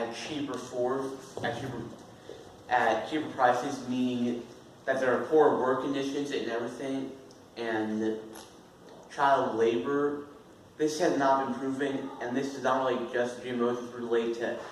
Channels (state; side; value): identical; both; correlation 1.00